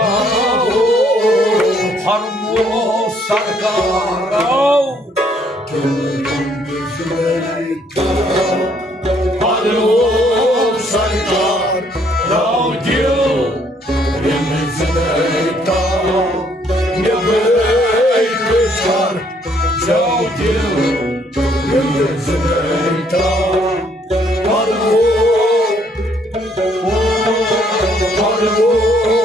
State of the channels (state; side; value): normal; both; correlation 0.67